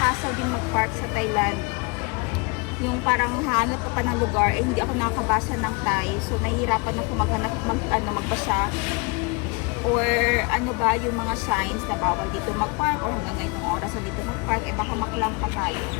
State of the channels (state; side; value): quieter; right; 29.1 dB